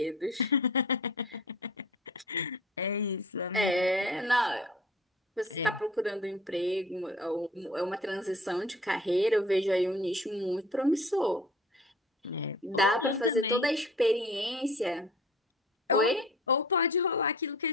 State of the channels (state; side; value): normal; both; correlation 0.45